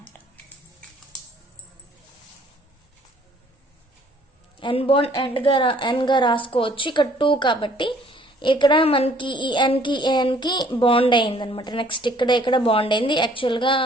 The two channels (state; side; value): normal; both; correlation 0.59